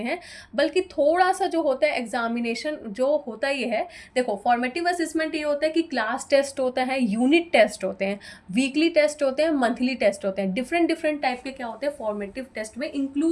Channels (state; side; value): identical; both; correlation 1.00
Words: बल्कि थोड़ा सा जो होता है एग्जामिनेशन जो होता ही है। देखो फॉर्मेटिव असेसमेंट ये होता है कि क्लास टेस्ट होता है, यूनिट टेस्ट होते हैं, वीकली टेस्ट होते हैं, मंथली टेस्ट होते हैं, डिफरेंट डिफरेंट टाइप के क्या होते हैं फॉर्मेटिव टेस्ट में